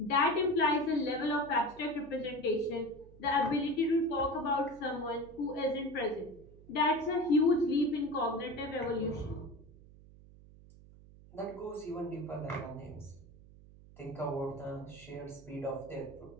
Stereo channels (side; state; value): right; noise; hum, 21 dB below the sound